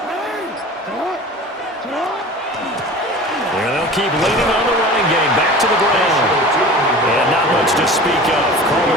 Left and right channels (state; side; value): normal; both; correlation 0.38